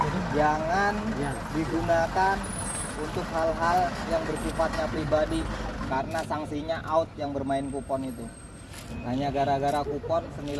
jangan digunakan untuk hal-hal yang bersifatnya pribadi karena sanksinya out yang bermain kupon itu. Hanya gara-gara kupon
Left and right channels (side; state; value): both; identical; correlation 1.00